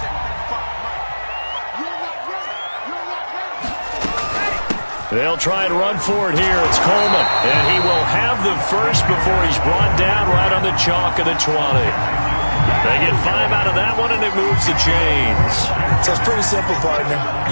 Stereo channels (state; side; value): inverted; both; correlation -1.00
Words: They'll try and run for it here. It's Coleman. And he will have the first before he's brought down right on the chalk of the 20. They get 5 out of that one, and it moves the chains. So it's pretty simple, partner.